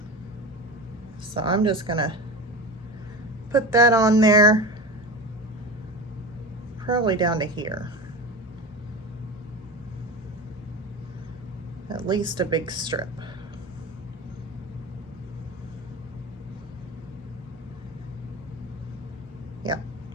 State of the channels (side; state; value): both; normal; correlation 0.29